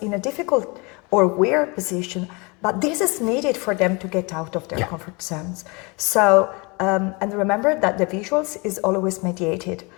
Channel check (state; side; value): quieter; right; 28.4 dB